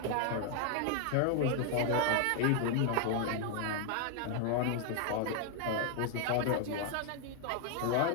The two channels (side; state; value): both; different; correlation 0.00